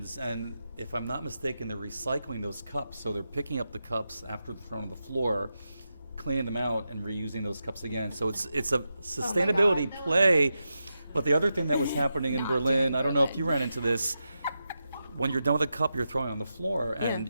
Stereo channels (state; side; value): inverted; both; correlation -0.89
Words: and if I'm not mistaken, they're recycling those cups. So they're picking up the cups after they're thrown on the floor, cleaning them out, and reusing those cups again. So it's a sustainability play. But the other thing that was happening in Berlin, I don't know if you ran into this. When you're done with a cup, you're throwing it on the floor, and